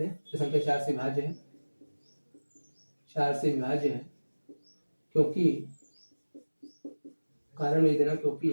तो संख्या 4 से विभाज्य है 4 से विभाज्य है क्योंकि कारण लिख देना क्योंकि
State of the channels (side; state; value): both; inverted; correlation -1.00